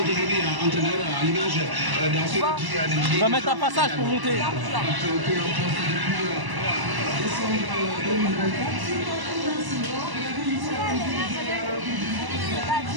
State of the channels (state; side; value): late; left; 1.0 ms